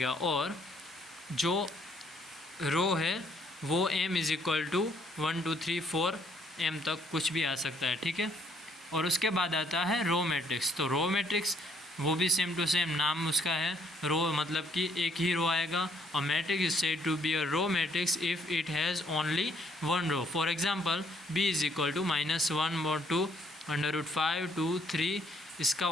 और जो रो है वो m is equal to 1 2 3 4 m तक कुछ भी आ सकता है, ठीक है। और उसके बाद आता है रो मैट्रिक्स। तो रो मैट्रिक्स वो भी सेम टू सेम नाम उसका है, रो मतलब कि एक ही रो आएगा। और matrix is said to be a row matrix if it has only one row. For example b is equal to -1 2 √5 2 3। इसका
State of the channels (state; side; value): normal; both; correlation 0.66